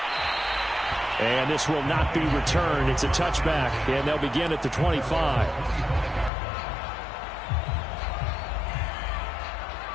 And this will not be returned. It's a touchback, and they'll begin at the 25.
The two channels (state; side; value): drops out; right; at 6.3 s